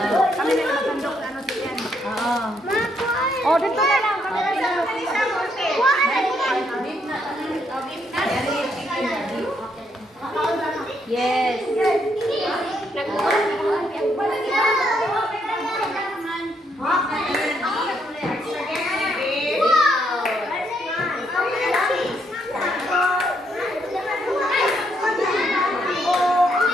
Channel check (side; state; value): both; normal; correlation 0.74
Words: Oh, dito na lang. Yes.